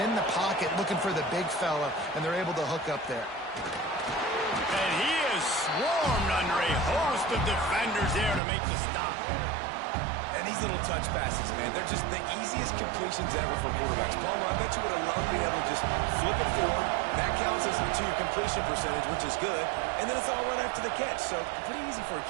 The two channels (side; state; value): left; drops out; at 8.4 s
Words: the pocket looking for the big fella, and they're able to hook up there. And he is swarmed under a host of defenders there to make the stop. And these little touch passes, man, they're just the easiest completions ever for quarterbacks. Palmer, I bet you would have loved being able to just flip it forward. That counts as to your completion percentage, which is good. And then it's all run after the catch, so pretty easy for a